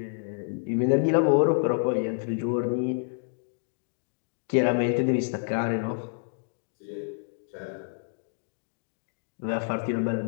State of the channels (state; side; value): silent; right; digital silence